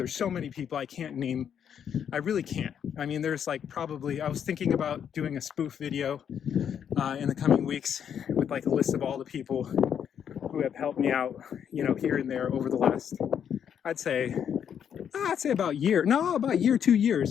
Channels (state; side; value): quieter; right; 8.4 dB